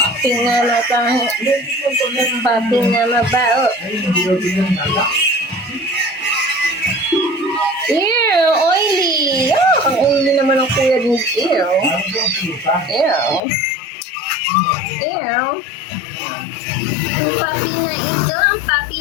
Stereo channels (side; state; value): right; drops out; at 13.4 s